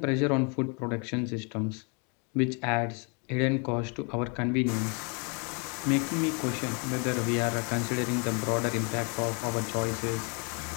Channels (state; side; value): quieter; right; 35.1 dB